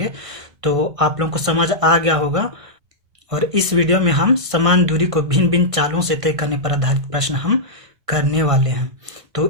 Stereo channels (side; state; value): left; late; 1.6 ms